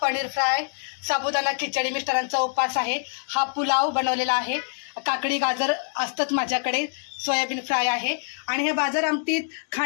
पनीर फ्राय, साबुदाणा खिचडी, मिस्टरांचा उपवास आहे. हा पुलाव बनवलेला आहे, काकडी गाजर असतंच माझ्याकडे, सोयाबीन फ्राय आहे. आणि ह्या बाजार आमटीत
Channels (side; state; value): right; silent; 62 dB below the other